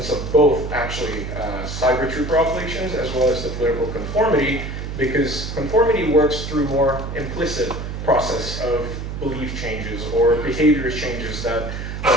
of both actually cyber trooper operations as well as the political conformity, because conformity works through more implicit process of belief changes or behavior changes that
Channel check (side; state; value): right; noise; hum, 6 dB below the sound